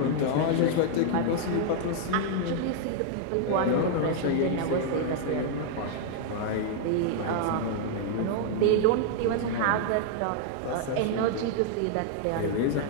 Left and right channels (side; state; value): both; different; correlation -0.01